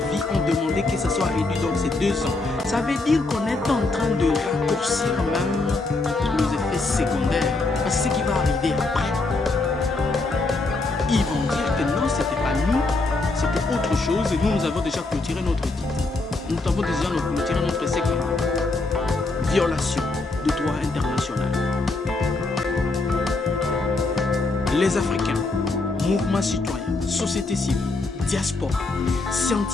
ont demandé que ça soit réduit dans ces 2 ans. Ça veut dire qu'on est en train de raccourcir même les effets secondaires. Parce que ce qui va arriver après, ils vont dire que non, c'était pas nous, c'était autre chose et nous avons déjà clôturé notre titre. Nous avons déjà clôturé notre essai. Violation du droit international. Les Africains, mouvements citoyens, société civile, diaspora,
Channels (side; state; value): right; quieter; 3.4 dB